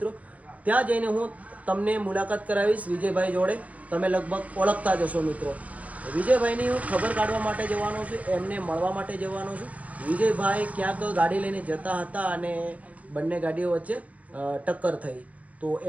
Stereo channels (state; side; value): late; left; 0.069 ms